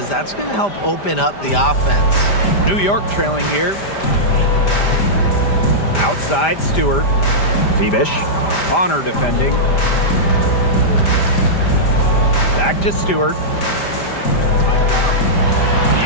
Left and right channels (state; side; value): late; right; 5.0 ms